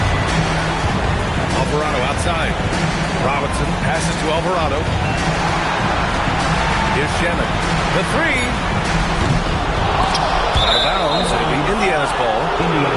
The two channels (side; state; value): both; identical; correlation 1.00